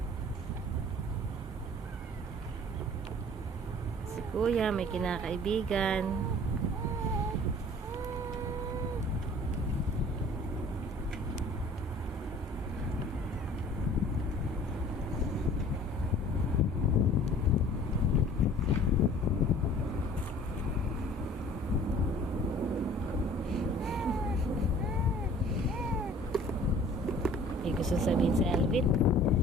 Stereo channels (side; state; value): both; normal; correlation 0.49